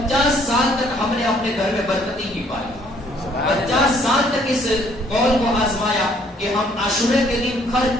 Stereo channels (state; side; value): normal; both; correlation 0.63